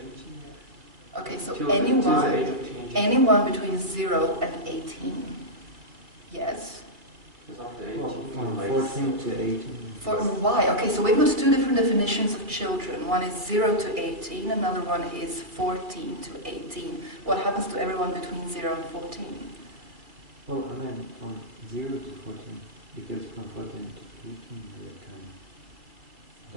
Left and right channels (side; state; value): left; late; 2.3 ms